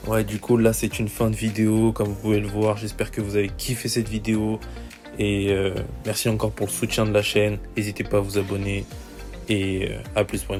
Ouais, du coup, là, c'est une fin de vidéo, comme vous pouvez le voir. J'espère que vous avez kiffé cette vidéo. Et merci encore pour le soutien de la chaîne. N'hésitez pas à vous abonner. Et à plus pour une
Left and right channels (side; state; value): both; identical; correlation 1.00